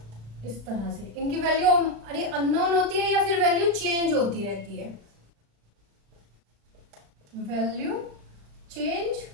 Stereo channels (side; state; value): left; late; 35 ms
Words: इस तरह से इनकी वैल्यू अरे अननोन होती है या फिर वैल्यू चेंज होती रहती है। वैल्यू चेंज